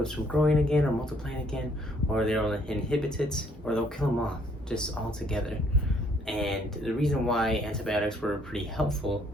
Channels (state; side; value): normal; both; correlation 0.65